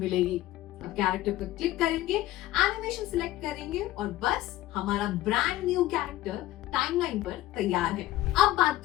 अब कैरेक्टर पर क्लिक करेंगे, एनिमेशन सिलेक्ट करेंगे और बस हमारा ब्रांड न्यू कैरेक्टर टाइमलाइन पर तैयार है। अब बात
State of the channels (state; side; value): quieter; right; 15.4 dB